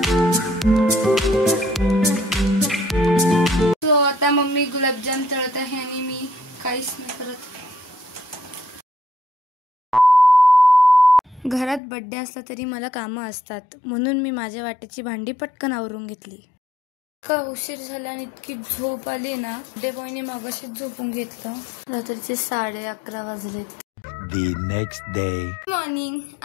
सो आता मम्मी गुलाबजाम तळत आहे आणि मी काहीच नाही करत. घरात बर्थडे असला तरी मला कामं असतात, म्हणून मी माझ्या वाट्याची भांडी पटकन आवरून घेतली. का उशीर झाला आणि इतकी झोप आली ना, बर्थडे बॉयने मगाशीच झोपून घेतलं. रात्रीचे 11:30 वाजलेत. The next day. मॉर्निंग.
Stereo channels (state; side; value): drops out; right; at 11.8 s